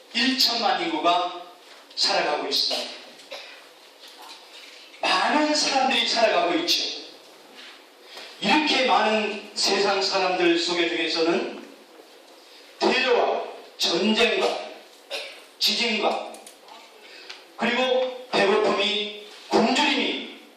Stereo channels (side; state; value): both; identical; correlation 1.00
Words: 1천만 인구가 살아가고 있습니다. 많은 사람들이 살아가고 있죠. 이렇게 많은 세상 사람들 속에 중에서는 테러와 전쟁과 지진과 그리고 배고픔이 굶주림이